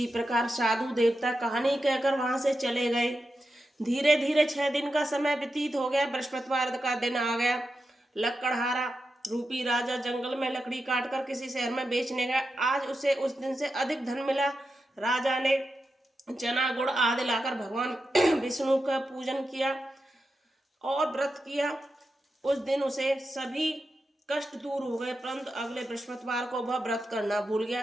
प्रकार साधु देवता कहानी कहकर वहां से चले गए। धीरे धीरे 6 दिन का समय व्यतीत हो गया। बृहस्पतिवार का दिन आ गया। लकड़हारा रूपी राजा जंगल में लकड़ी काटकर किसी शहर में बेचने गया। आज उसे उस दिन से अधिक धन मिला। राजा ने चना गुड़ आदि लाकर भगवान विष्णु का पूजन किया और व्रत किया। उस दिन उसे सभी कष्ट दूर हो गए, परंतु अगले बृहस्पतिवार को वह व्रत करना भूल गया।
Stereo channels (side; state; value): both; normal; correlation 0.89